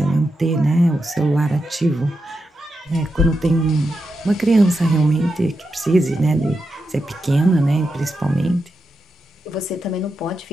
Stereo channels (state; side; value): normal; both; correlation 0.87